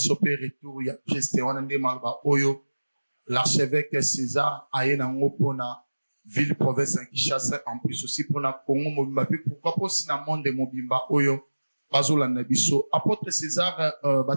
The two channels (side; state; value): both; inverted; correlation -1.00